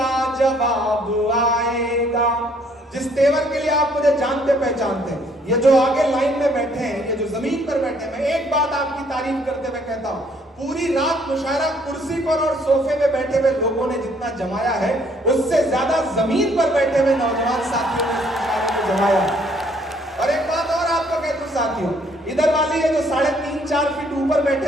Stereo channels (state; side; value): normal; both; correlation 0.64